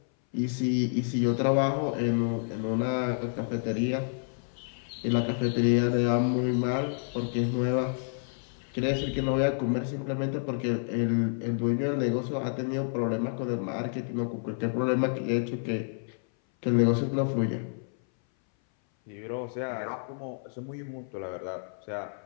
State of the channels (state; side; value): silent; right; 58 dB below the other